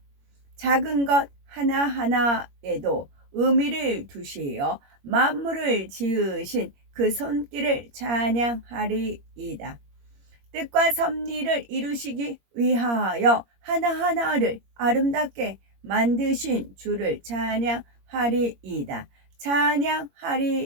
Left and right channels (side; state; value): left; late; 21 ms